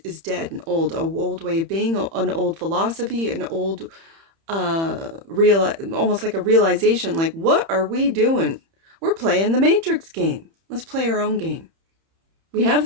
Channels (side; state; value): left; late; 30 ms